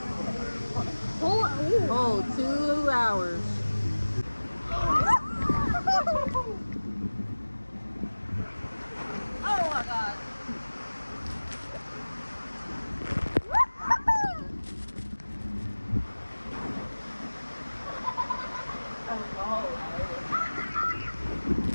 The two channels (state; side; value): inverted; both; correlation -1.00